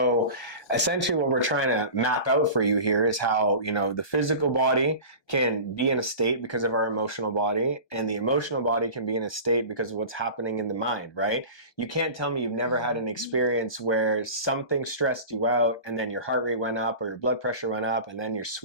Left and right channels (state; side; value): late; right; 1.2 ms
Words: essentially what we're trying to map out for you here is how, the physical body can be in a state because of our emotional body, and the emotional body can be in a state because of what's happening in the mind, right? You can't tell me you've never had an experience where something stressed you out and then your heart rate went up or your blood pressure went up and then you're